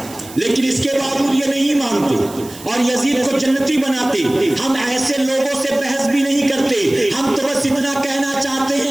لیکن اس کے باوجود یہ نہیں مانتے اور یزید کو جنتی بناتے۔ ہم ایسے لوگوں سے بحث بھی نہیں کرتے، ہم تو بس اتنا کہنا چاہتے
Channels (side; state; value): right; noise; hiss, 17 dB below the sound